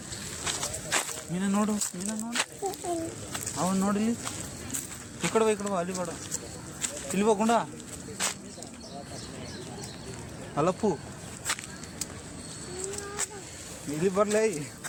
ಮೀನ ನೋಡು ಅವನು ನೋಡಿ ಈ ಕಡೆ ಬಾ ಅಲ್ಲಿ ಬೇಡ ಇಲ್ಲಿ ಹೋಗುಂಡ ಅಲ್ಲಪ್ಪು ಇಲ್ಲಿ ಬರ್ಲೇ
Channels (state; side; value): identical; both; correlation 1.00